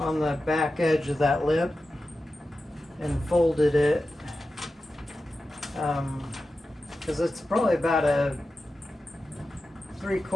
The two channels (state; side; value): normal; both; correlation 0.92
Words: the back edge of that lip and folded it, because it's probably about a